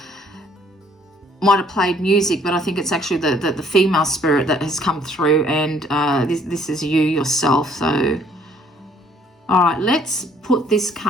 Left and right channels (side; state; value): both; normal; correlation 0.61